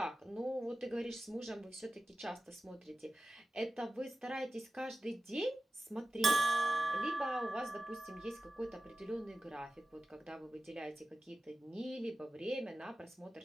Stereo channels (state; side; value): normal; both; correlation 0.94